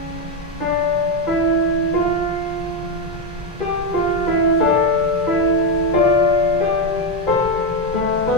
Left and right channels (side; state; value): both; normal; correlation 0.07